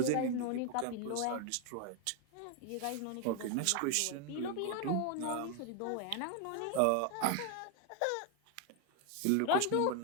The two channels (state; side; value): different; both; correlation 0.01